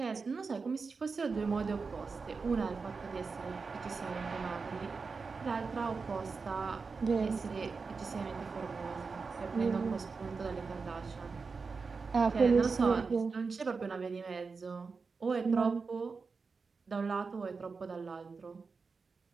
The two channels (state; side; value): quieter; left; 4.7 dB